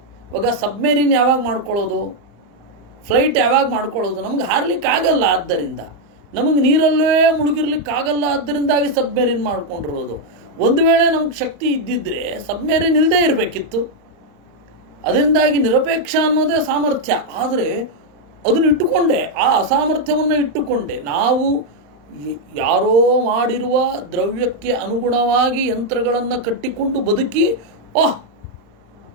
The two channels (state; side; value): late; left; 34 ms